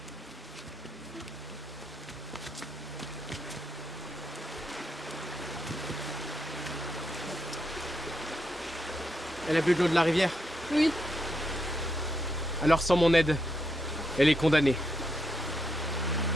Elle a bu de l'eau de la rivière? Oui. Alors sans mon aide, elle est condamnée.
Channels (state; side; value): normal; both; correlation 0.80